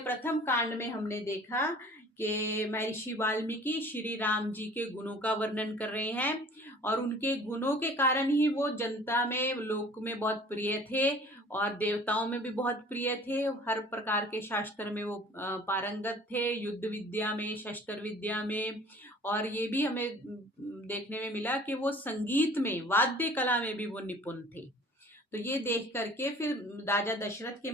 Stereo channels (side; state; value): both; normal; correlation 0.48